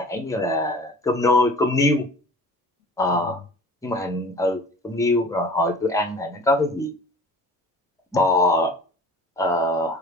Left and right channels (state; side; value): normal; both; correlation 0.43